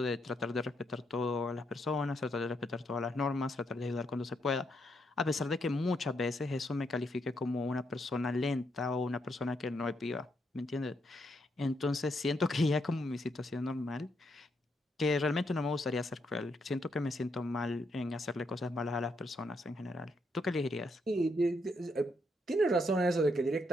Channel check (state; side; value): normal; both; correlation 0.78